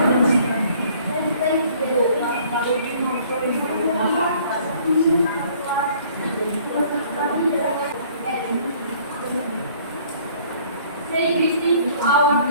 Say greeting to our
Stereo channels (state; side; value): inverted; both; correlation -0.57